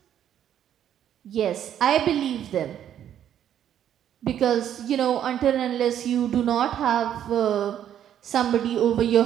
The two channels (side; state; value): left; quieter; 10.2 dB